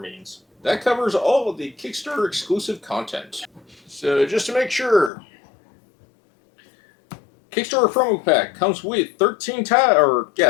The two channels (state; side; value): drops out; right; at 5.1 s